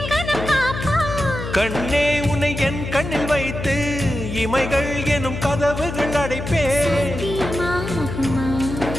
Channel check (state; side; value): noise; left; hum, 7 dB below the sound